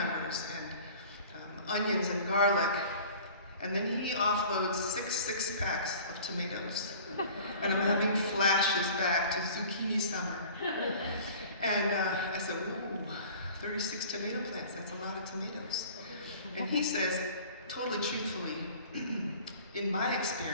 and onions and garlic. And then he offloads 6 packs of tomatoes. And I'm having flashes back to zucchini summer. And I said, ooh, 36 tomato plants, that's a lot of tomatoes. And he says, totally truthfully, in my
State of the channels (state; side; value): inverted; both; correlation -0.45